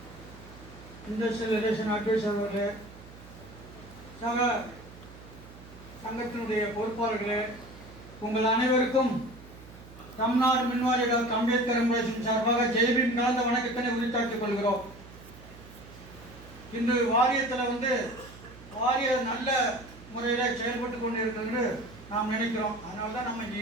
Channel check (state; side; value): noise; right; hum, 18 dB below the sound